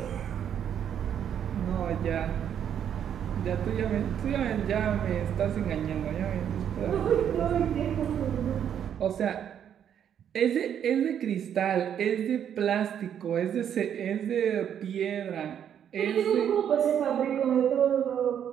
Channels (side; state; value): left; quieter; 9.1 dB